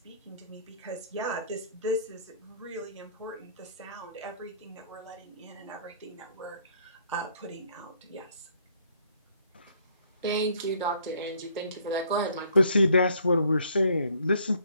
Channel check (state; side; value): inverted; both; correlation -0.62